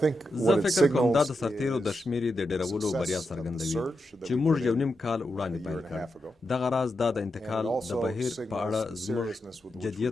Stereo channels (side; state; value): both; normal; correlation 0.87